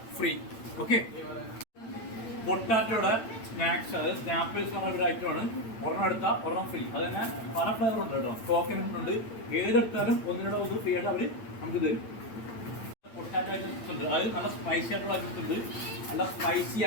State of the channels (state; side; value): late; right; 8.9 ms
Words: ഫ്രീ. ഓക്കെ, പൊട്ടാറ്റോയുടെ സ്നാക്സ്, അത് സ്നാപ്പിൾസ് പറഞ്ഞ ഒരു ഐറ്റമാണ്. ഒരെണ്ണം എടുത്താൽ ഒരെണ്ണം ഫ്രീ. അത് തന്നെ പല ഫ്ലേവർ ഉണ്ട് കേട്ടോ. കോക്കനട്ട് ഉണ്ട്. ഏതെടുത്താലും ഒന്നിനോട് ഒന്ന് ഫ്രീ ആയിട്ട് അവർ നമുക്ക് തരും. പൊട്ടാറ്റോ ഐറ്റംസ് ഉണ്ട്, അത് നല്ല സ്പൈസി ആയിട്ടുള്ള ഐറ്റംസ് ഉണ്ട്, നല്ല സ്പൈസി